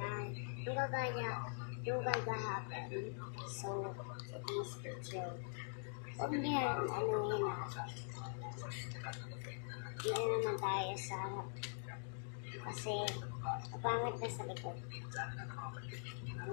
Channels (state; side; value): silent; right; digital silence